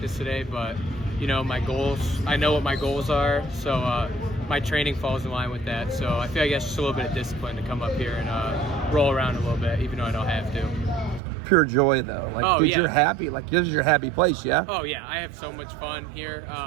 today, but, you know, my goals, I know what my goals are, so my training falls in line with that. So I feel like that's just a little bit of discipline to come up here and roll around a little bit, even though I don't have to. Pure joy, though. Like, dude, yeah. You're happy. Like, this is your happy place, yeah? Oh, yeah. I have so much fun here.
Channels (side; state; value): left; drops out; at 11.2 s